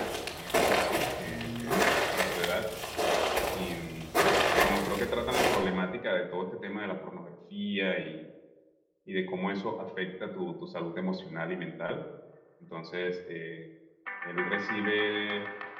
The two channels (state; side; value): identical; both; correlation 1.00